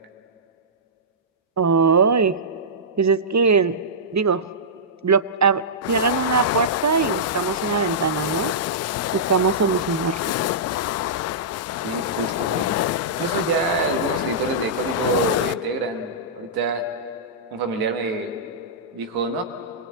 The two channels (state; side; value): normal; both; correlation -0.16